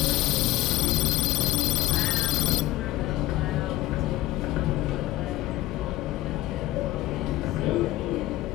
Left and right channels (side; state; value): right; quieter; 16.5 dB